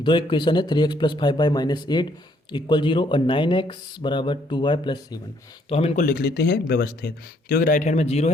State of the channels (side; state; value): both; normal; correlation 0.67